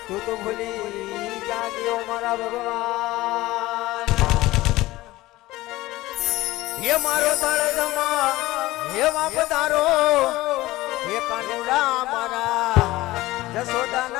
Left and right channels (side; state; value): right; quieter; 18.2 dB